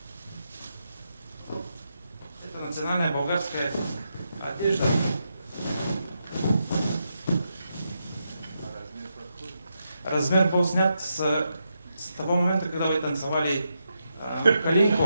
национальная болгарская одежда. Размер был снят с того момента, когда вы танцевали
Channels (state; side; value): inverted; both; correlation -0.84